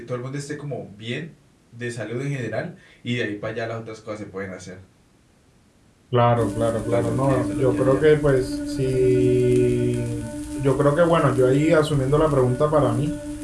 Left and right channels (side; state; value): both; identical; correlation 1.00